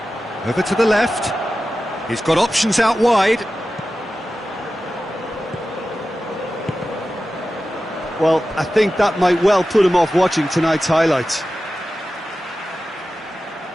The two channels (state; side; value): normal; both; correlation 0.94